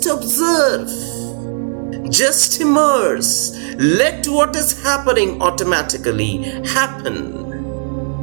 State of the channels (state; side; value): silent; left; digital silence